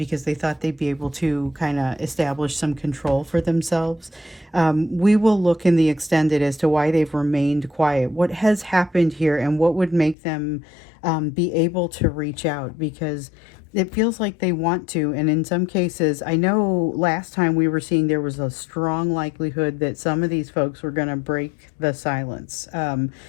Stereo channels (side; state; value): right; drops out; at 10.2 s